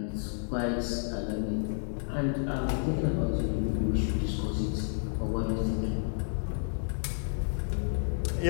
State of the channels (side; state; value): right; silent; 57 dB below the other